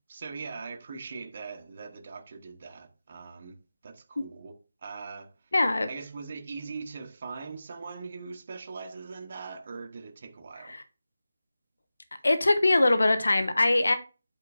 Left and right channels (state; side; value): inverted; both; correlation -0.96